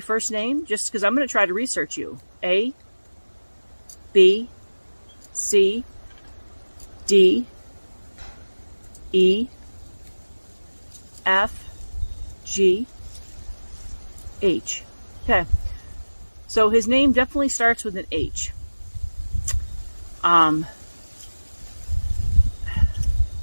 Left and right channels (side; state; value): both; inverted; correlation -1.00